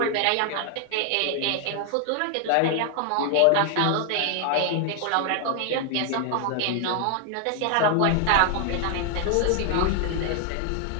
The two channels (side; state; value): both; different; correlation 0.00